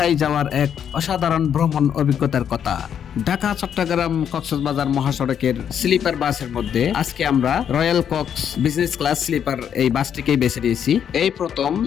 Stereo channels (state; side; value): quieter; right; 8.6 dB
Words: যাওয়ার এক অসাধারণ ভ্রমণ অভিজ্ঞতার কথা। ঢাকা চট্টগ্রাম কক্সবাজার মহাসড়কের স্লিপার বাসের মধ্যে আজকে আমরা Royal Coach business class sleeper এই বাসটিকেই বেছে নিয়েছি। এই প্রথম